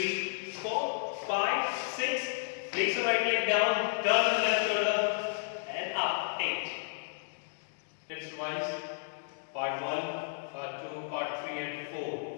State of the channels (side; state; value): right; silent; digital silence